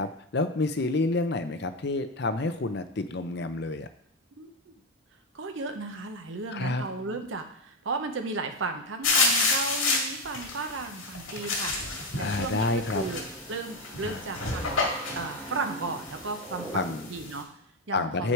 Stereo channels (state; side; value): normal; both; correlation 0.10